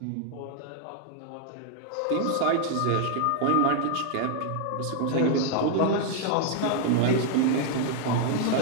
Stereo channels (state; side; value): different; both; correlation 0.00